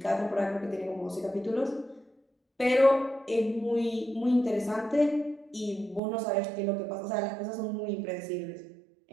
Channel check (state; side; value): drops out; left; at 6.0 s